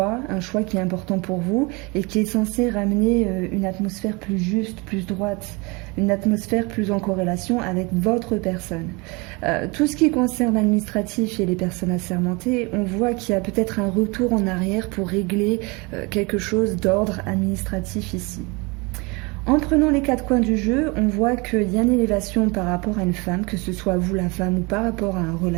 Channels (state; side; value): quieter; left; 27.5 dB